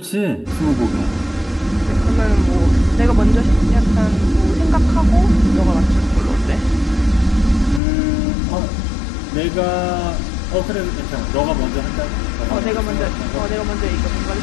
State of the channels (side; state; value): right; drops out; at 7.8 s